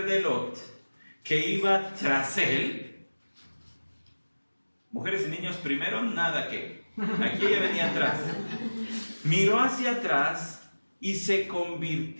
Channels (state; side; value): inverted; both; correlation -1.00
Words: de Lot, que iba tras él, mujeres y niños primero, nada que, aquí ella venía atrás, miró hacia atrás y se